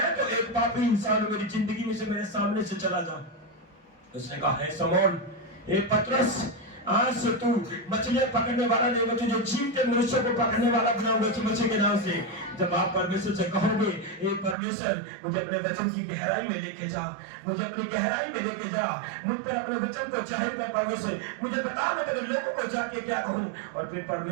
तो एक पापी इंसान हूं, मेरी जिंदगी में से मेरे सामने से चला जा। उसने कहा हे समौन, हे पतरस, आज से तू मछलियां पकड़ने वाला नहीं, मैं तुझे जीवते मनुष्यों को पकड़ने वाला बनाऊंगा यीशु मसीह के नाम से। जब आप परमेश्वर से कहोगे हे परमेश्वर, मुझे अपने वचन की गहराई में लेके जा, मुझे अपनी गहराई में लेके जा, मुझ पर अपने वचन को जाहिर कर परमेश्वर, मुझे बता मैं तेरे लोगों को जाके क्या कहूं। और फिर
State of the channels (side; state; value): left; drops out; at 14.6 s